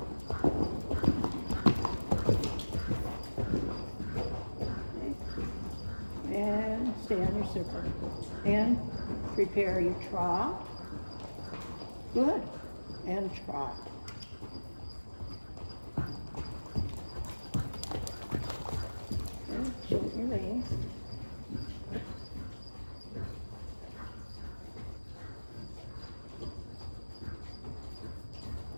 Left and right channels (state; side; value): inverted; both; correlation -1.00